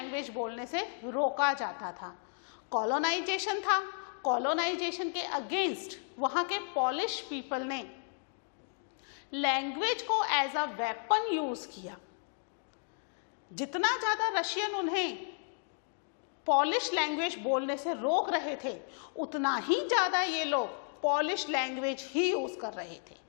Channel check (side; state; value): right; silent; 55 dB below the other